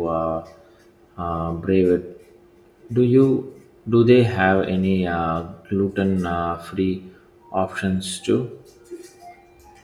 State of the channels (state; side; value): identical; both; correlation 1.00